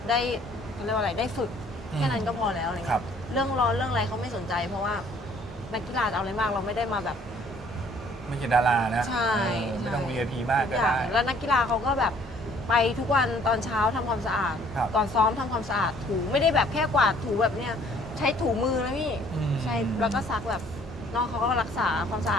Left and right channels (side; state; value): both; normal; correlation 0.59